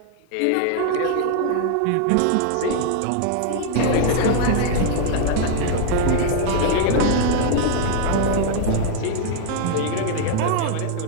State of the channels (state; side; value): different; both; correlation 0.00